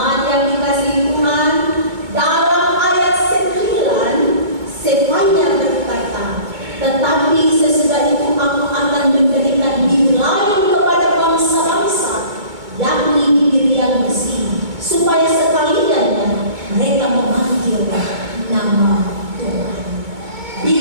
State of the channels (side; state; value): left; late; 2.3 ms